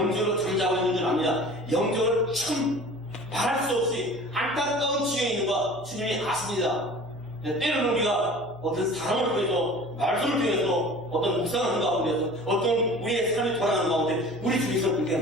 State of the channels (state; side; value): noise; left; hum, 26 dB below the sound